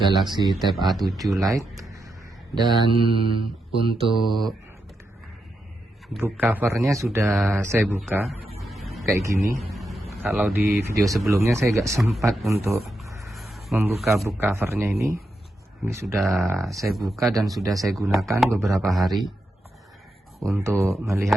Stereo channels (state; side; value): normal; both; correlation 0.85